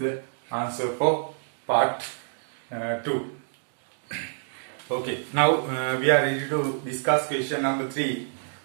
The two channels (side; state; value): left; silent; digital silence